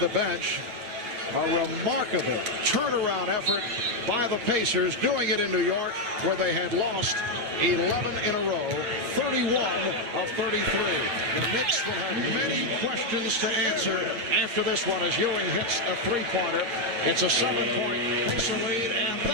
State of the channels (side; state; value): left; late; 9.0 ms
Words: bench. A remarkable turnaround effort by the Pacers, doing it in New York, where they had lost 11 in a row, 31 of 33. The Knicks will have many questions to answer after this one as Ewing hits a three-pointer. It's a 7-point Pacer lead, and